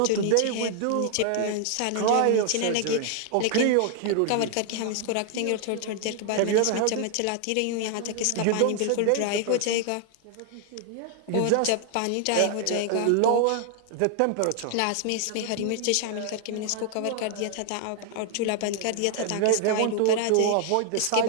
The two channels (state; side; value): different; both; correlation 0.00